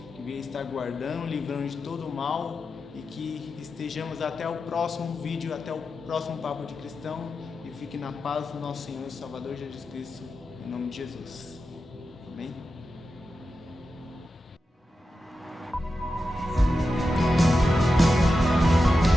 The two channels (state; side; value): normal; both; correlation 0.90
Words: que venha estar guardando, livrando de todo o mal, e que estejamos até o próximo vídeo, até o próximo Papo de Cristão, e fique na paz do nosso Senhor e Salvador Jesus Cristo, em nome de Jesus.